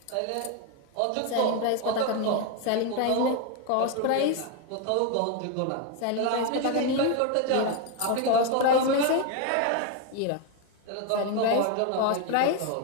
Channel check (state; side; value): different; both; correlation 0.01